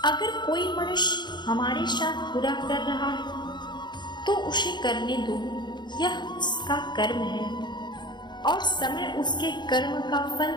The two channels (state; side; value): late; right; 0.21 ms